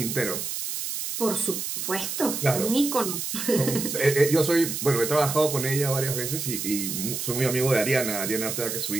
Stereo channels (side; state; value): right; noise; hiss, 4 dB below the sound